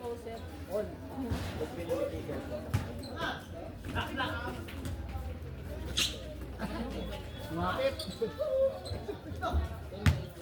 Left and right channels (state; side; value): identical; both; correlation 1.00